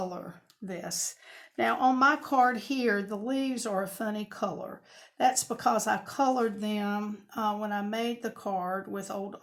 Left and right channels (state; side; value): identical; both; correlation 1.00